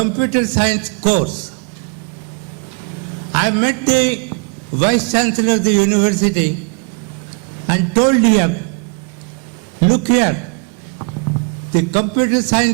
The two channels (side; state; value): left; quieter; 36.4 dB